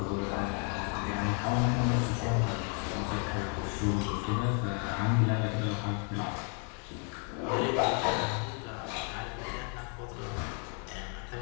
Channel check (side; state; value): right; quieter; 39.9 dB